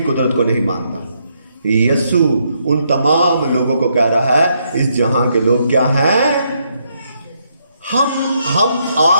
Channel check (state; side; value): inverted; both; correlation -0.76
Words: कुदरत को नहीं मानता। यीशु उन तमाम लोगों को कह रहा है, इस जहां के लोग क्या हैं, हम